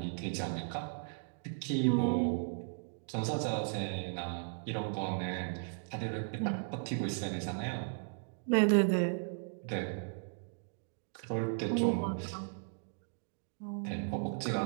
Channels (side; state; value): left; silent; digital silence